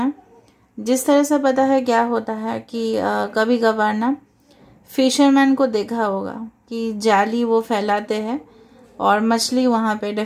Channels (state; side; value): identical; both; correlation 1.00